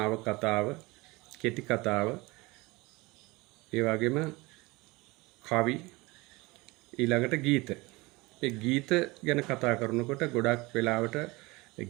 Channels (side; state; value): left; quieter; 23.2 dB